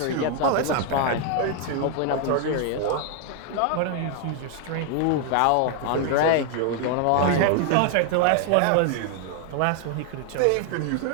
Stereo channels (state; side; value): different; both; correlation 0.00